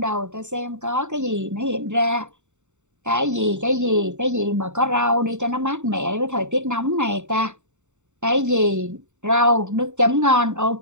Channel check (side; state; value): left; late; 0.84 ms